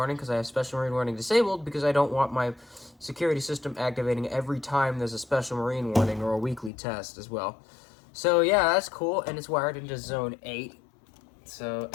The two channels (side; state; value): right; drops out; at 6.7 s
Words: because I have special marine warning disabled, because I don't want my security system activating every time there's a special marine warning or a weekly test as well. So yeah, that's cool, and it's wired into zone 8. So,